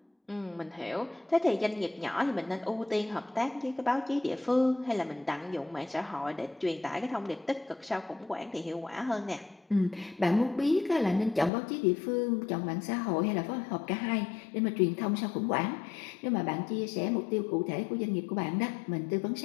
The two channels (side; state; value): right; drops out; at 11.5 s